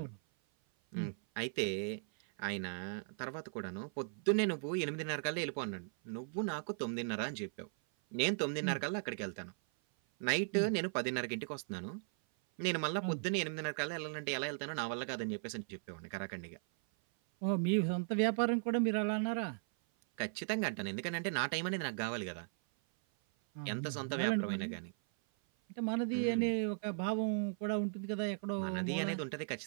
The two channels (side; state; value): left; silent; 53 dB below the other